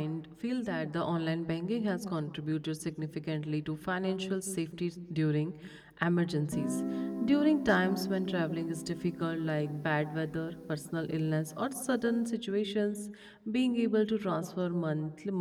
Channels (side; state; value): both; identical; correlation 1.00